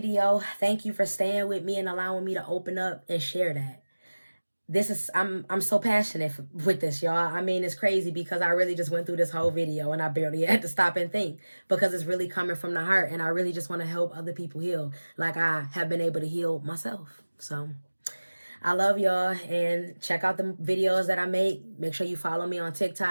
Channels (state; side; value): inverted; both; correlation -1.00